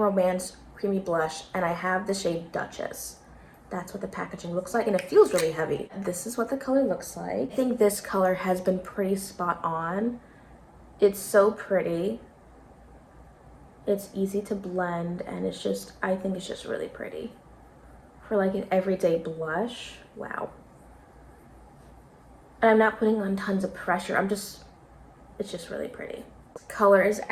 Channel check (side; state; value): both; identical; correlation 1.00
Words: Creamy Blush, and I have the shade Duchess. That's what the packaging looks like, and it feels really heavy. This is what the color looks like. I think this color has been pretty spot on. It's so pretty. It's easy to blend, and I think it's just really pretty. For like an everyday blush, wow. And I'm not putting on tons of pressure. It's just really pretty. Color is